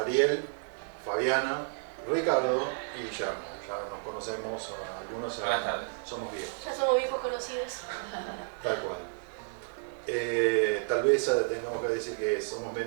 Fabiana, Ricardo y Guillermo. Ya nos conocemos, algunos somos viejos. Ya somos viejos conocidos. Tal cual. Tal vez tengamos que decir que somos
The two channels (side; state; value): left; silent; 57 dB below the other